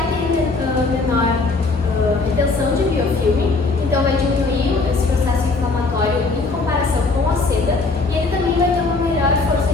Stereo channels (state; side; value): quieter; right; 3.7 dB